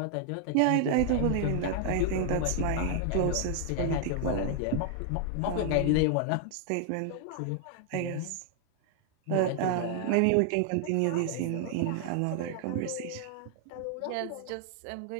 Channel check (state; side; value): different; both; correlation 0.00